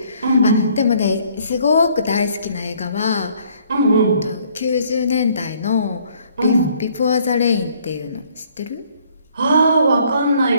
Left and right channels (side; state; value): both; inverted; correlation -0.62